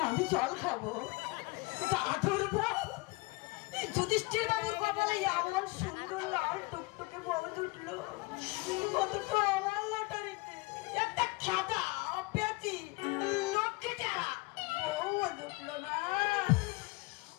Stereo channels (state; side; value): quieter; right; 24.8 dB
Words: আমি জল খাবো। দাদুর বউ, যুধিষ্ঠির বাবুর কপালে এমন সুন্দর লাল টুকটুকে বউ জুটলো, অথচ আমার লটারিতে একটা খাতা পেয়েছি লক্ষ্মী টেরা বউ জুটলো না।